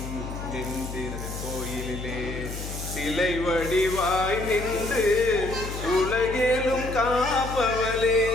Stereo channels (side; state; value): left; noise; hum, 8 dB below the sound